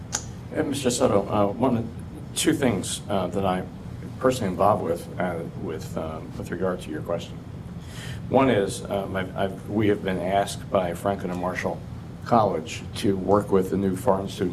And Mr. Soto, two things that I'm personally involved with regard to your question. One is we have been asked by Franklin and Marshall College to work with the new foreign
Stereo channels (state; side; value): identical; both; correlation 1.00